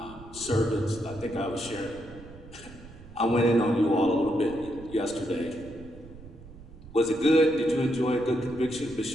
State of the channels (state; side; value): noise; right; rumble, 18 dB below the sound